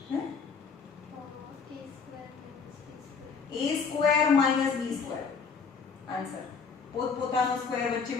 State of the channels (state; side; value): quieter; right; 5.5 dB